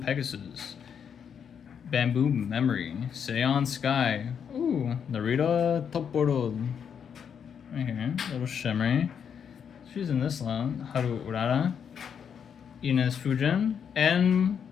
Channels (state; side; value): quieter; right; 7.5 dB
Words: Pegasus, Bamboo Memory, Seion Sky, ooh, Narita Toporo. Right here, little shimmery. She's in this one. Haru Urara, Ines Fujin, and